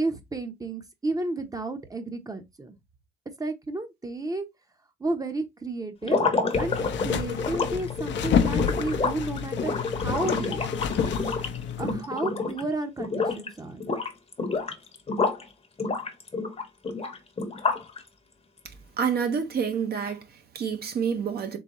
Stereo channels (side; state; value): both; normal; correlation 0.46